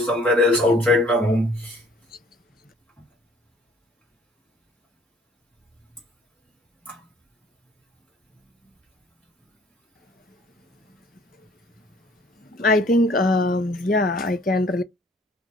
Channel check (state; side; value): normal; both; correlation 0.56